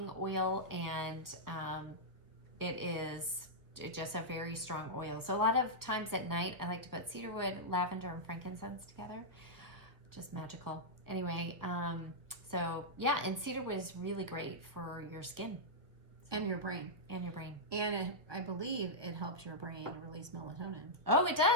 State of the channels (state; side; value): late; left; 1.4 ms